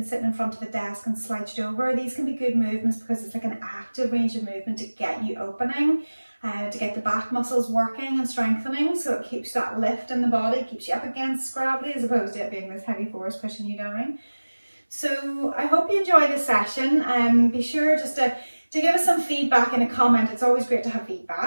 sitting in front of a desk and slouched over, these can be good movements because it's like an active range of movement to get you opening, to get the back muscles working and strengthening, so it keeps that lift in the body, keeps you up against gravity as opposed to it being this heavy force pushing you down. So I hope you enjoy this session. Be sure just to give us some feedback in a comment. It's always great to have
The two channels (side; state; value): both; inverted; correlation -1.00